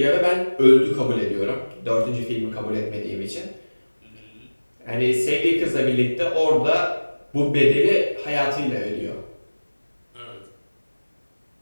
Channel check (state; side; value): inverted; both; correlation -1.00